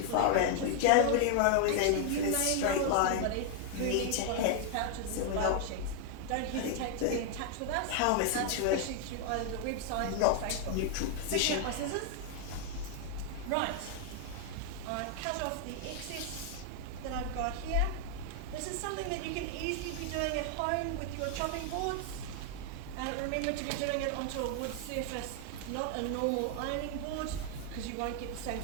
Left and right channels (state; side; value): different; both; correlation 0.00